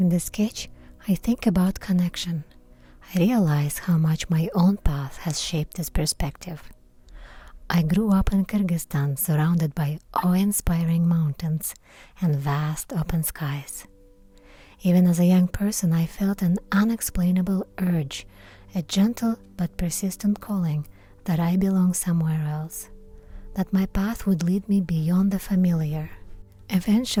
the sketch, I think about connection. I realize how much my own path has shaped this perspective. I grew up in Kyrgyzstan, surrounded by awe-inspiring mountains and vast open skies. Even as a young person, I felt an unexplainable urge, a gentle but persistent calling that I belong somewhere else, that my path would lead me beyond the familiar.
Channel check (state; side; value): identical; both; correlation 1.00